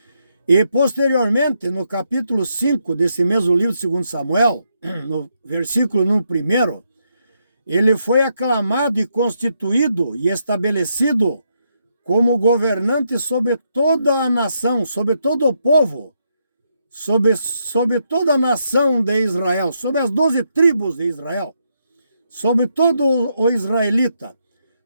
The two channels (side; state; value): both; inverted; correlation -0.79